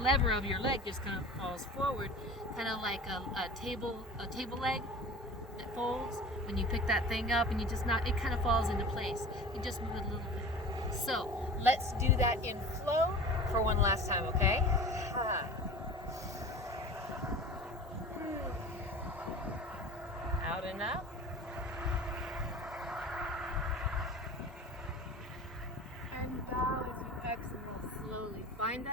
of your leg just kind of falls forward, kind of like a table leg that folds. When you pick that thing up, and you just it kind of falls into place. You just move it a little bit. So let's do that in flow for one last time, okay? Out and up. And bow as you exhale slowly. Find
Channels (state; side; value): normal; both; correlation 0.38